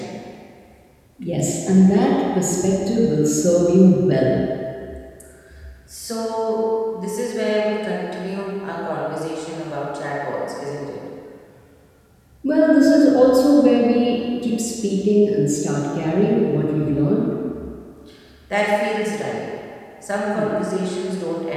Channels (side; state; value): both; identical; correlation 1.00